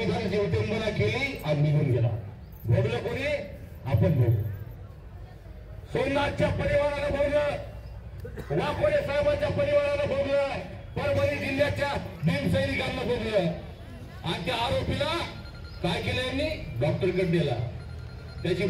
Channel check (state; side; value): identical; both; correlation 1.00